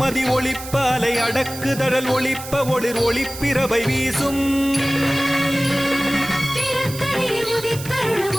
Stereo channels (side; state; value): right; noise; hiss, 12 dB below the sound